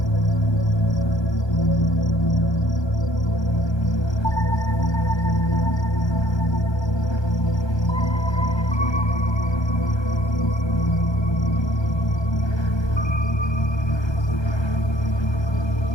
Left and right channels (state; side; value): late; right; 1.2 ms